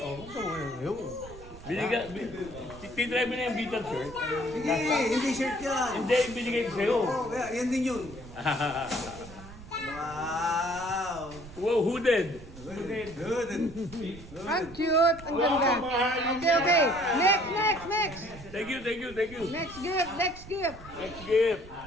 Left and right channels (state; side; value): noise; right; rumble, 16 dB below the sound